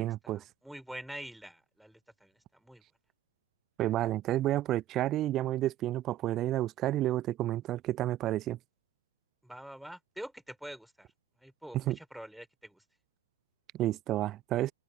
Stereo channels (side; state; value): left; quieter; 12.9 dB